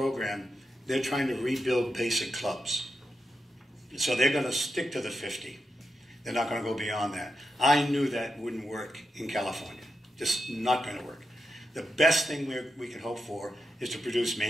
they're trying to rebuild basic clubs. So they're going to stick to the 50. They're not going to go beyond that. I knew that wouldn't work in California. Just not going to work. The best thing we can hope for is to produce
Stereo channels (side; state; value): both; normal; correlation 0.86